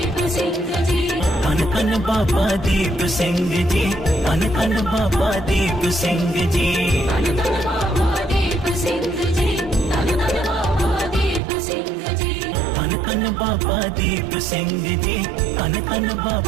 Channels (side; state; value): left; drops out; at 11.4 s